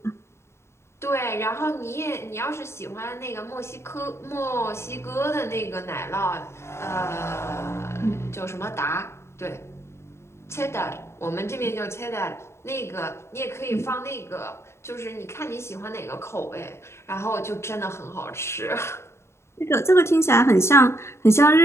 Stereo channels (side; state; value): right; late; 0.13 ms